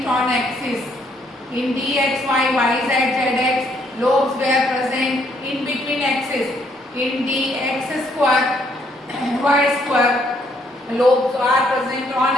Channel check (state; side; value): normal; both; correlation 0.69